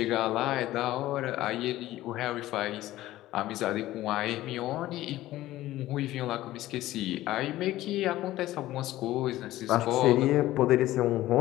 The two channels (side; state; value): right; quieter; 15.7 dB